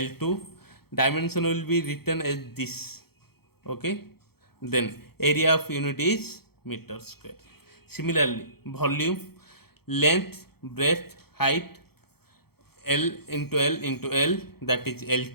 Dimension will be written as this. Okay, then area of unit is meter square. Similarly, volume, length, breadth, height, L into L, that is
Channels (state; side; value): late; right; 0.96 ms